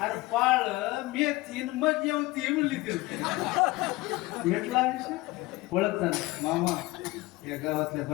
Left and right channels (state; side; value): quieter; right; 20.6 dB